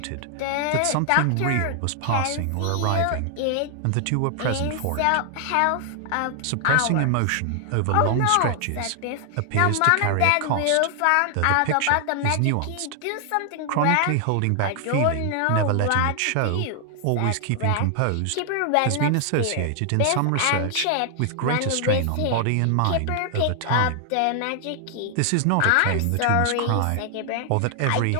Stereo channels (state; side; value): different; both; correlation 0.00